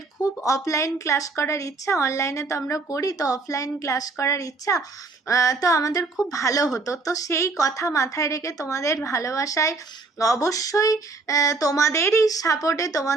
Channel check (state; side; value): quieter; left; 3.8 dB